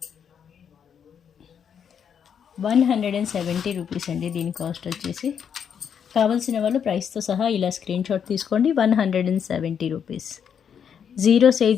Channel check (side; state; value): right; quieter; 7.8 dB